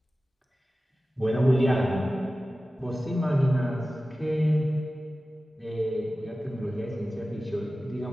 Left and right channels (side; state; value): both; normal; correlation 0.95